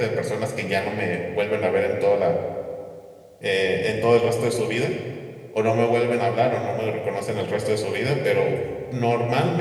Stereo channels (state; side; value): identical; both; correlation 1.00